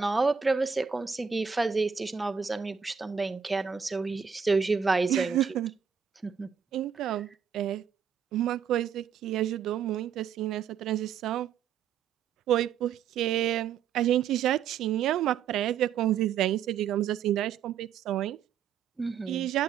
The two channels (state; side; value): quieter; left; 7.4 dB